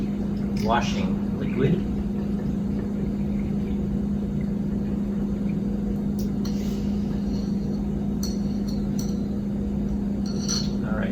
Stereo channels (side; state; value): both; identical; correlation 1.00